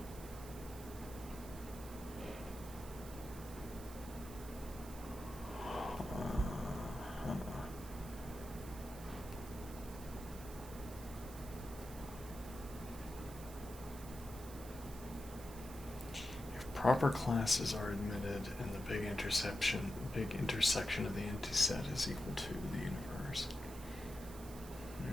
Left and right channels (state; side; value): noise; right; hiss, 15 dB below the sound